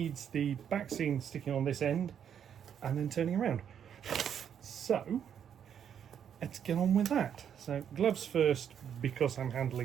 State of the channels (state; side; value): quieter; left; 8.6 dB